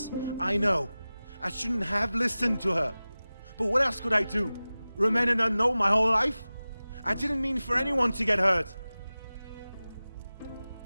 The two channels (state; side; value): inverted; both; correlation -0.97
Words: I know. I shouldn't have listened to her. But what else could I do? Remain an unknown my whole life? I didn't mean for anyone to get hurt.